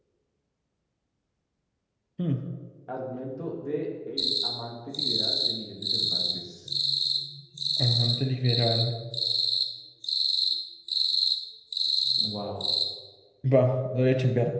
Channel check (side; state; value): both; identical; correlation 1.00